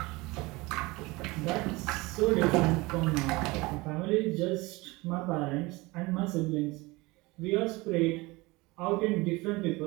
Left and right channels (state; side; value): quieter; left; 22.8 dB